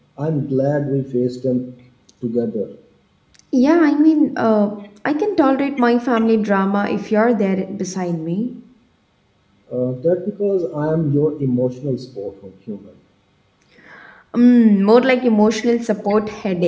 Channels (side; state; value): both; identical; correlation 1.00